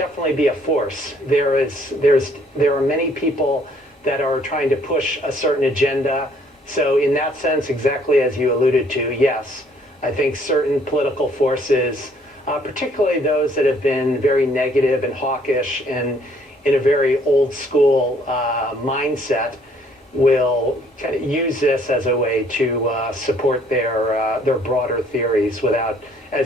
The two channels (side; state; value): both; normal; correlation 0.63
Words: be a force. There are many people that are trying to push a certain agenda. So in that sense, exactly as you alluded to, yes, I think certain political forces, particularly those that have been very negative and hawkish and in a very old school mindset, will kind of use this as a way to support their broader theories without,